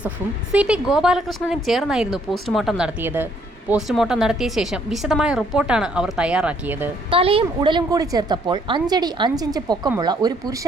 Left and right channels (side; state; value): both; normal; correlation 0.67